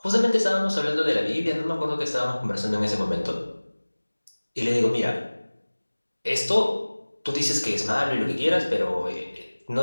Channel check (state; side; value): inverted; both; correlation -1.00